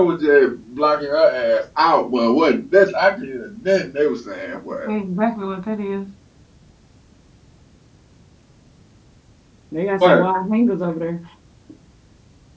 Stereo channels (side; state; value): both; identical; correlation 1.00